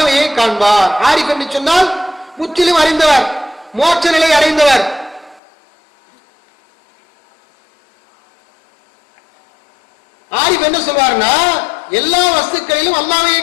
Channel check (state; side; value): drops out; right; at 5.4 s